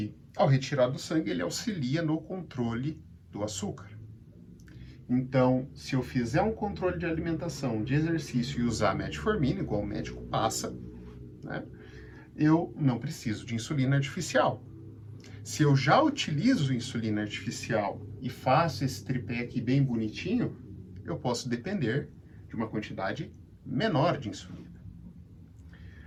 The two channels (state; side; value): identical; both; correlation 1.00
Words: ao retirar do sangue, ele auxilia no controle do açúcar. Então, se eu fizer um controle de alimentação, de exercício e usar metformina, igual o médico passa, né, eu não preciso de insulina artificial. Se eu já utilizo insulina artificial e faço esse tripé aqui bem bonitinho, eu posso depender de uma quantidade menor de insulina.